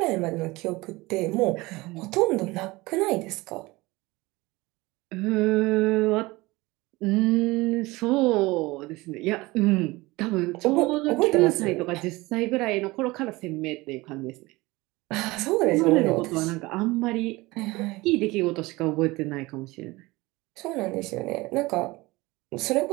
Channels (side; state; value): left; quieter; 21.5 dB